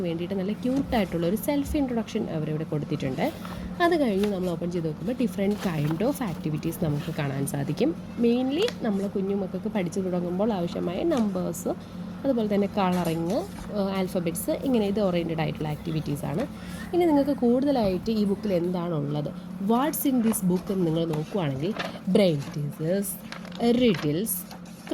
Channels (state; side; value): identical; both; correlation 1.00